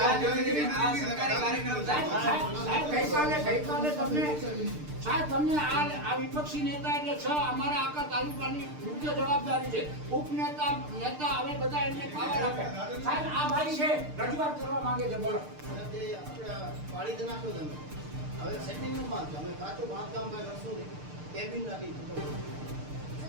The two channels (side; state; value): left; late; 6.7 ms